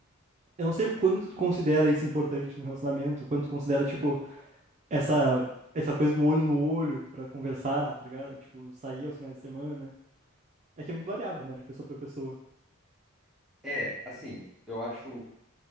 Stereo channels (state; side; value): normal; both; correlation 0.56